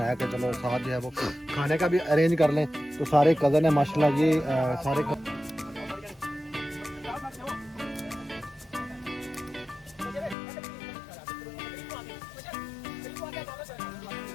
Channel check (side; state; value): right; drops out; at 10.4 s